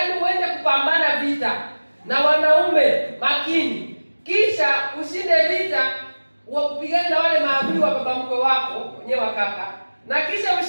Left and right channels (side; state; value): both; inverted; correlation -1.00